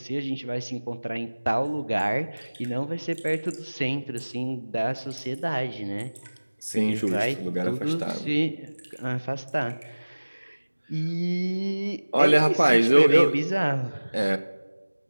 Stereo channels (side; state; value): both; inverted; correlation -1.00